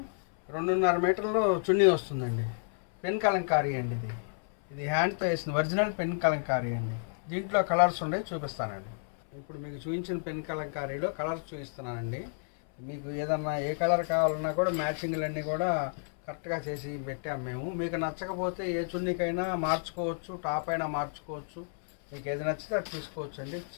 2.5 మీటర్లు చున్నీ వస్తుందండి. పెన్ కలంకారీ అండి. ఇది హ్యాండ్తో వేసిన ఒరిజినల్ పెన్ కలంకారీ అండి. దీంట్లో కలర్స్ ఉండే చూపిస్తానండి. ఇప్పుడు మీకు చూపించిన పెన్ కలంకారీలో కలర్స్ చూపిస్తున్నానండి. మీకు ఏదన్నా ఏ కలర్ కావాలన్నా కూడా మ్యాచింగ్లన్నీ కూడా కరెక్ట్గా చేసి పెట్టాము మేము. మీకు నచ్చకపోతే ఏ చున్నీకైనా మార్చుకోవచ్చు, టాప్ అయినా మార్చుకోవచ్చు. మీకు ఏది నచ్చితే అది తీసుకోవచ్చు అండి.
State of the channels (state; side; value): silent; right; 57 dB below the other